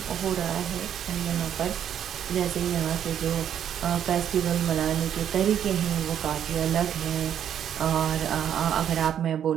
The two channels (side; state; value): left; quieter; 9.5 dB